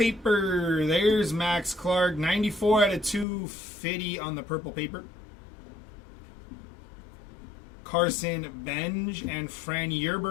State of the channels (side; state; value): right; drops out; at 3.2 s